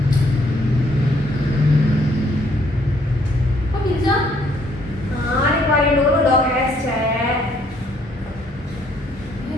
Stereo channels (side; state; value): both; normal; correlation 0.66